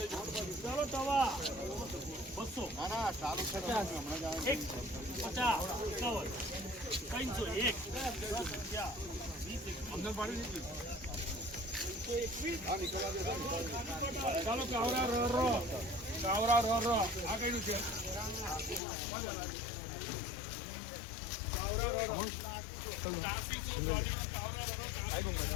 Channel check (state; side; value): drops out; right; at 18.8 s